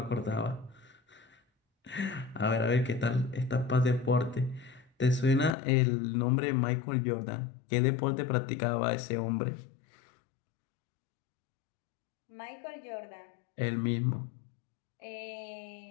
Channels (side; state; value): right; drops out; at 5.5 s